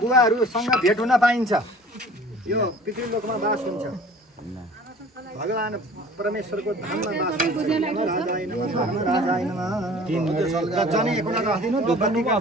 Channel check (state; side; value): normal; both; correlation 0.46